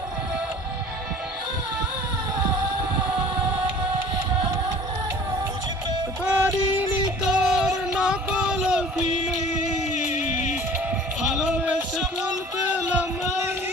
পারিনি তোর নকল অভিনয়, ভালোবেসে ফল পেলাম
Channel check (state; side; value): normal; both; correlation 0.47